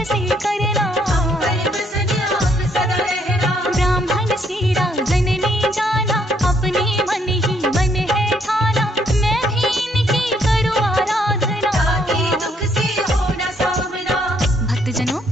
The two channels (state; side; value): normal; both; correlation 0.70